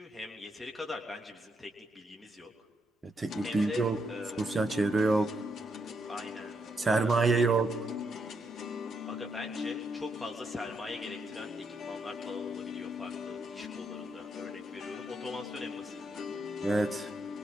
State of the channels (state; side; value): normal; both; correlation 0.79